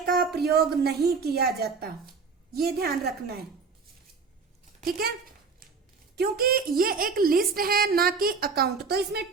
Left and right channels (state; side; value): quieter; left; 5.0 dB